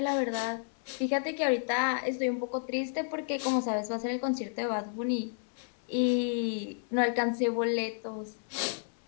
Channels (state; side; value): silent; right; digital silence